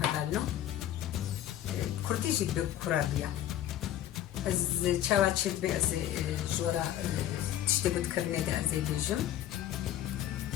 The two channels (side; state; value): right; quieter; 12.1 dB